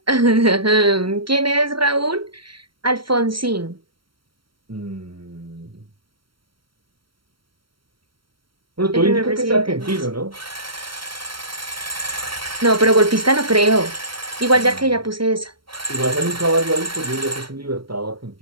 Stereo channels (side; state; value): left; late; 0.73 ms